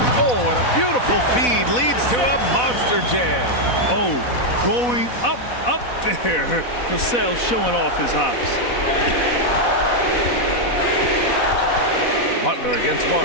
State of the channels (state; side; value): late; right; 4.1 ms